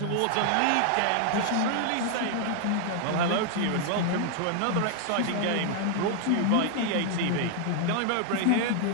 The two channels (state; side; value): different; both; correlation 0.00